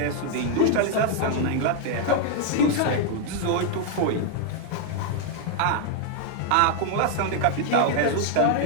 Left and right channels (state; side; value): different; both; correlation 0.00